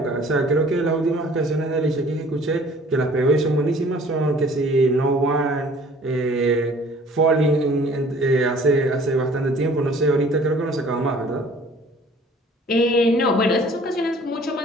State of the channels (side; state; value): both; normal; correlation 0.52